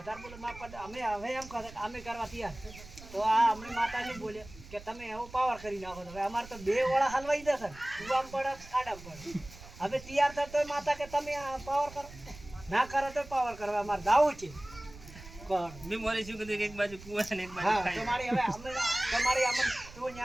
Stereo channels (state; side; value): noise; right; rumble, 17 dB below the sound